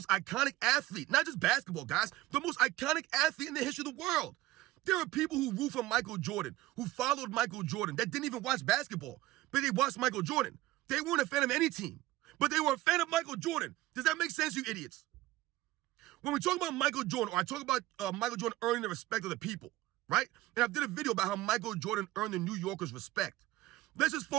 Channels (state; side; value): quieter; left; 17.2 dB